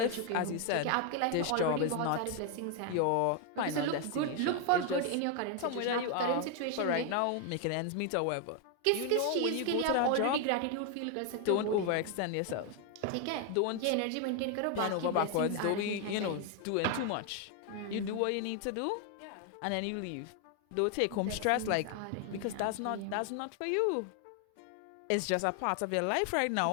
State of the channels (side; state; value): both; different; correlation 0.01